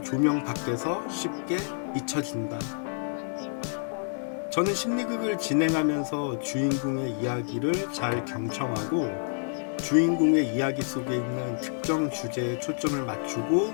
조명 밖에서 쉽게 잊혀진다. 저는 심리극을 진행하면서 주인공의 이야기를 잘 경청하고 주인공의 이야기 속에 있는 특정 주제에 초점을 맞추고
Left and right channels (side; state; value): right; silent; digital silence